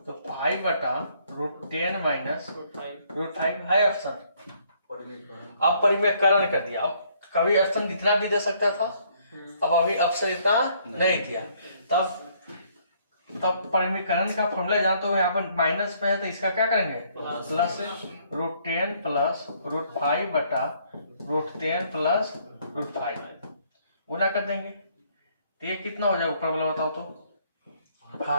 तो 5/√10 माइनस √5 है ऑप्शन। अब परिमेयकरण कर दिया। अब कभी ऑप्शन इतना भी दे सकता था, अब अभी ऑप्शन इतना नहीं दिया, तब परिमेयकरण का फॉर्मूला जानते हो। यहाँ पर माइनस में है तो इसका क्या करेंगे प्लस √10 प्लस √5/√10 प्लस √5 गुना कर देंगे, तो ये कितना हो जाएगा ऊपर वाला बताओ तो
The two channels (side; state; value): both; inverted; correlation -0.66